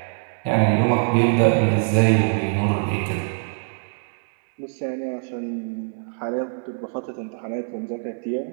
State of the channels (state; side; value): silent; left; digital silence